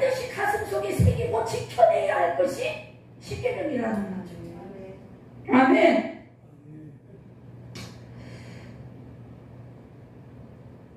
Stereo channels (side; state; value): both; identical; correlation 1.00